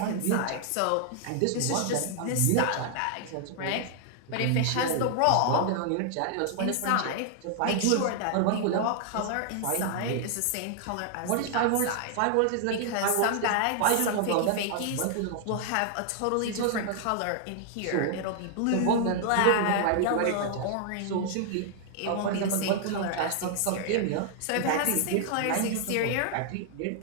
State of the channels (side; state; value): both; different; correlation 0.00